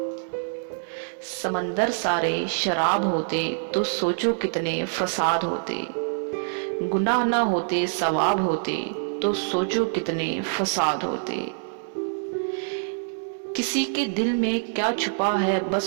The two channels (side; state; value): left; silent; digital silence